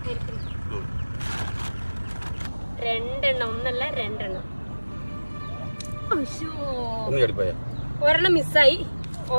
രണ്ടെണ്ണം, ഒന്നല്ല രണ്ടെണ്ണം. ഒരെണ്ണം മിസ്സായി,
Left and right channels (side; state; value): both; inverted; correlation -1.00